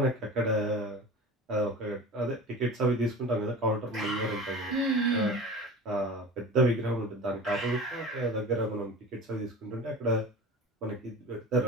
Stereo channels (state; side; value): normal; both; correlation 0.35